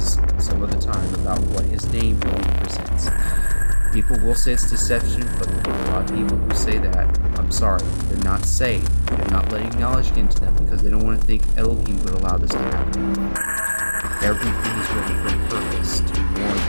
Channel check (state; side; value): inverted; both; correlation -1.00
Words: some other time about what His name really presents. People will say it's deception, but a lot of people who say that, I'm sorry, they're not saved. They're not letting knowledge get into them because they don't want to think Elohim would allow this to happen. Everything is written for a purpose to warn